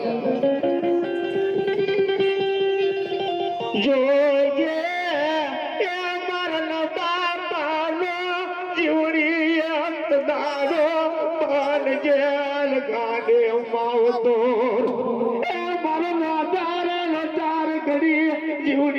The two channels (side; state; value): both; identical; correlation 1.00